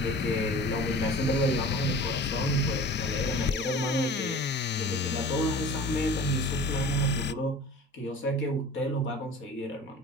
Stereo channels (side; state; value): both; normal; correlation 0.40